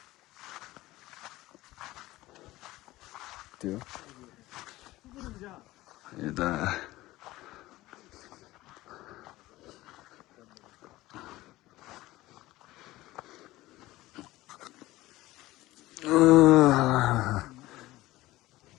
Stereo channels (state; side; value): quieter; right; 17.7 dB